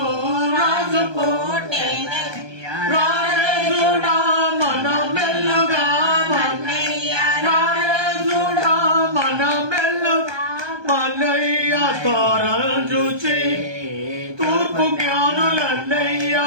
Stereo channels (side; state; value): left; late; 1.2 ms